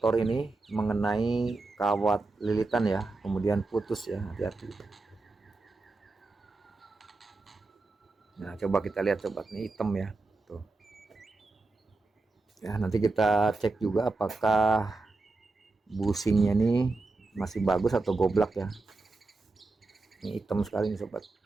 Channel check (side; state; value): left; quieter; 3.4 dB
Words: ini mengenai kawat lilitan ya, kemudian putus ya, hati-hati. Nah coba kita lihat sobat, ini hitam ya tuh ya. Nanti kita cek juga apakah busingnya ini masih bagus atau goblak ya. Ini hitam sekali nih sobat.